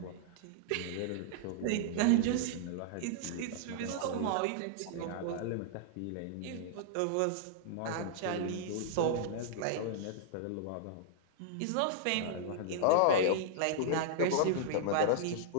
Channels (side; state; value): both; different; correlation -0.02